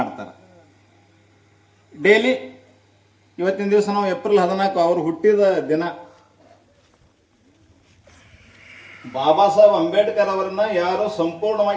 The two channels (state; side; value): identical; both; correlation 1.00